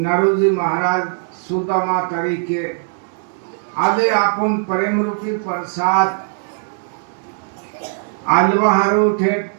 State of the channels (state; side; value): silent; left; digital silence